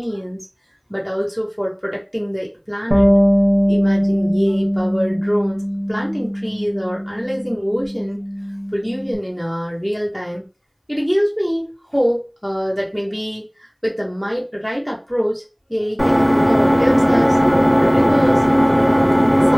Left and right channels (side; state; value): both; identical; correlation 1.00